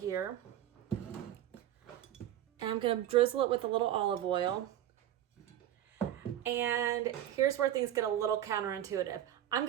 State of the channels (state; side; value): quieter; left; 11.9 dB